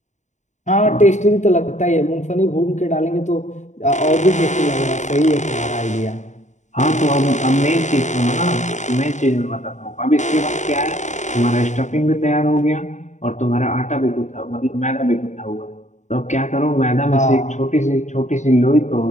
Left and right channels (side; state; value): right; late; 0.35 ms